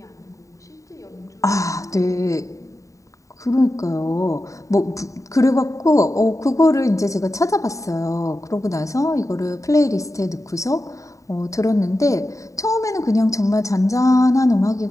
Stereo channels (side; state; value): right; late; 0.16 ms